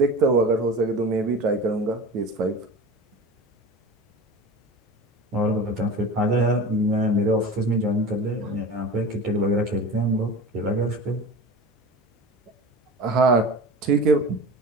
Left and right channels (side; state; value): both; normal; correlation 0.33